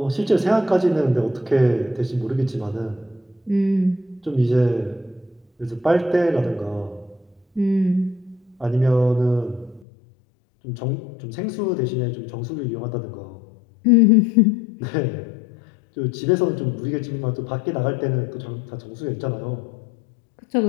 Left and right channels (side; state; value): right; drops out; at 9.9 s